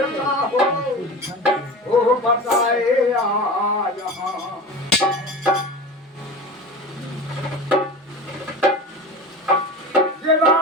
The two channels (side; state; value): both; normal; correlation 0.31